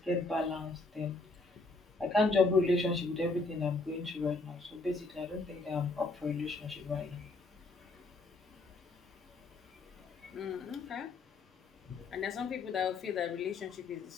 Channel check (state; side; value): quieter; right; 3.4 dB